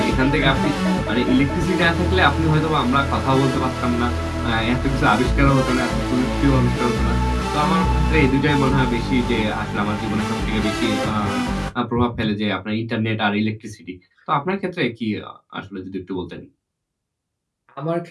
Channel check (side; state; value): both; identical; correlation 1.00